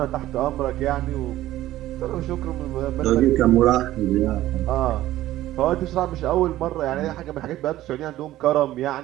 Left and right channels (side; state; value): left; quieter; 14.7 dB